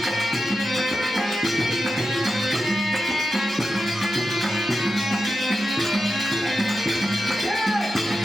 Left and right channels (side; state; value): both; normal; correlation 0.90